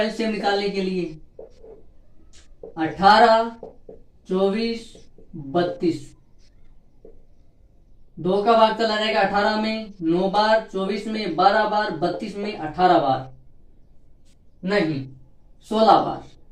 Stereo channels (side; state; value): both; identical; correlation 1.00